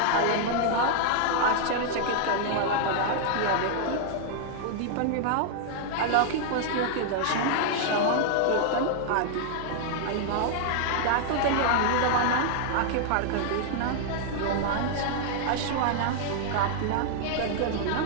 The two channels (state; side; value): different; both; correlation 0.00